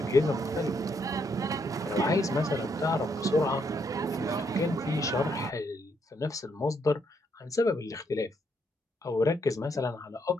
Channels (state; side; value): normal; both; correlation 0.74